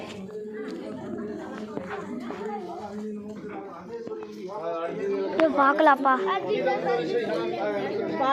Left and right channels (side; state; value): both; identical; correlation 1.00